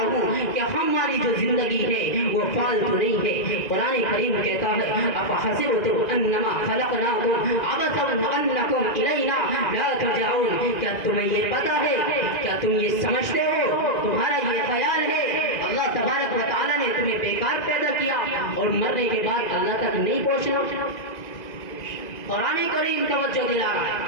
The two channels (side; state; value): right; late; 2.0 ms